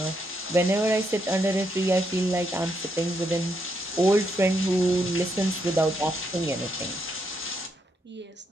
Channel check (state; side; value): normal; both; correlation 0.78